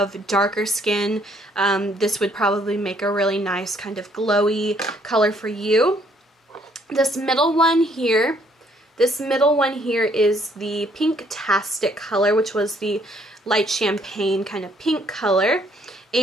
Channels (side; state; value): both; normal; correlation 0.65